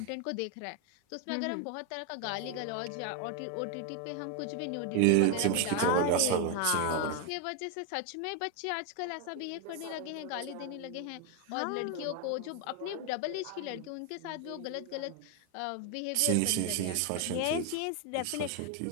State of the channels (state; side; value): different; both; correlation 0.01